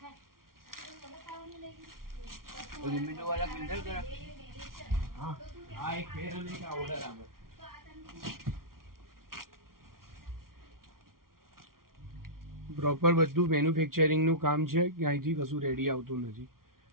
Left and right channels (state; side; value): late; left; 0.93 ms